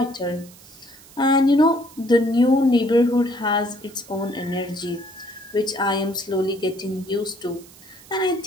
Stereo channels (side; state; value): right; noise; hiss, 22 dB below the sound